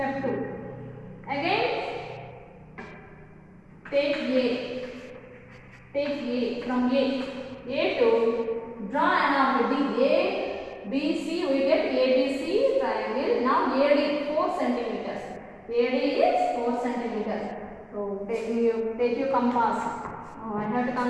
2. Again, take A. Take A from A to draw an arc D. A, B, C. We get ABC triangle. Now AD 4 centimeters. AD is 4 centimeters. So take your compass. I have to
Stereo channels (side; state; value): both; identical; correlation 1.00